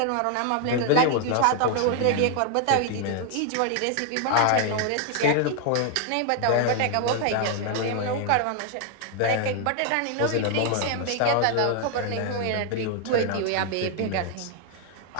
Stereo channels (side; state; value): both; different; correlation 0.00